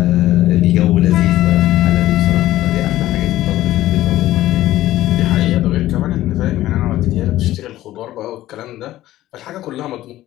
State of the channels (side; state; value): right; quieter; 14.9 dB